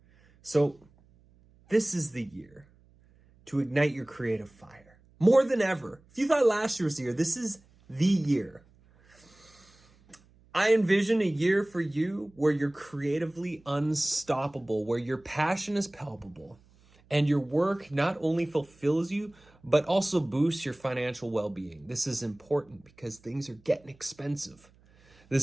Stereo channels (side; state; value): right; noise; hum, 30 dB below the sound